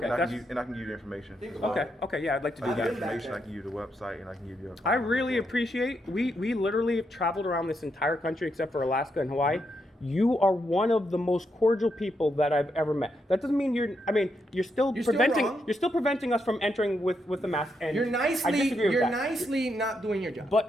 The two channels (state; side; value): normal; both; correlation 0.80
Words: And I that's- can give you the information. Think as about well. it. Okay, yeah, I'd like to do I can give you that. the information, back I can give you the website, and I can give you a. I really appreciate, we literally have traveled around this entire country except for Alaska and Hawaii. You are one of the most cordial people that I've ever met. That doesn't mean you're still You're still preventing, wrong. you're still preventing us from entering with the mask. And You're I disagree with you're that. nicely not doing your job.